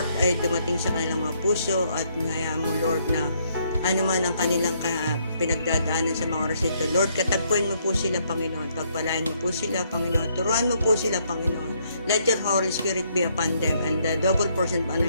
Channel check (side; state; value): both; inverted; correlation -0.71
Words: ay dumating sa kanilang mga puso at hayaan mo, Lord, na ano man ang kanilang pinagdadaanan sa mga oras ito. Lord, katagpuin mo po sila, Panginoon. Pagpalain mo po sila, Panginoon. Turuan mo po sila, Panginoon. Let your Holy Spirit be upon them and the double portion of